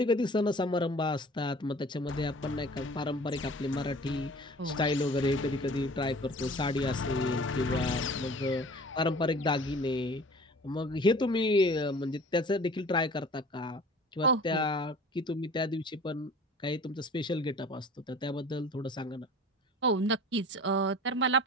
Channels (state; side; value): normal; both; correlation 0.45